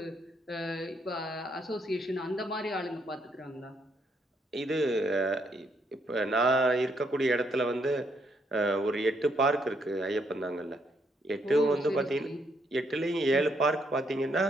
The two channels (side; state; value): both; normal; correlation 0.74